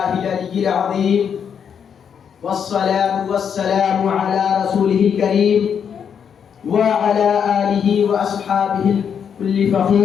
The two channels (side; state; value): right; quieter; 7.6 dB